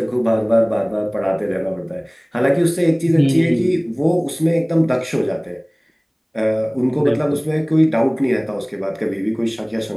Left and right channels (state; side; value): identical; both; correlation 1.00